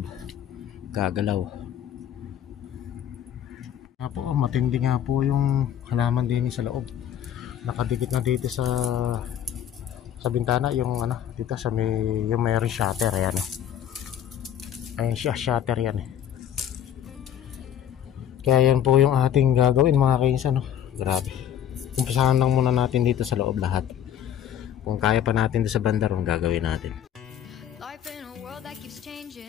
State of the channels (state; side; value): quieter; right; 10.0 dB